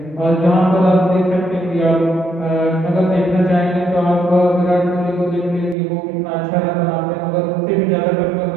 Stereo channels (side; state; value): left; drops out; at 5.8 s